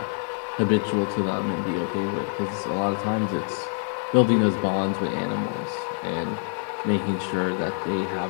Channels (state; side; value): silent; right; 57 dB below the other